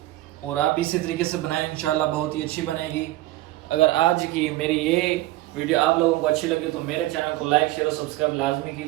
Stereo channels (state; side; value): quieter; left; 17.3 dB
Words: और आप इसी तरीके से बनाएं, इंशाल्लाह बहुत ही अच्छी बनेगी। अगर आज की मेरी ये वीडियो आप लोगों को अच्छी लगी तो मेरे चैनल को लाइक शेयर और सब्सक्राइब लाजमी